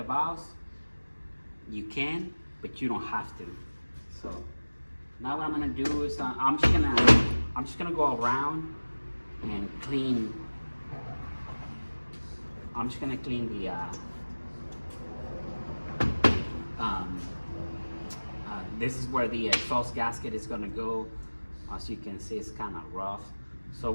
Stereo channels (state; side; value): inverted; both; correlation -1.00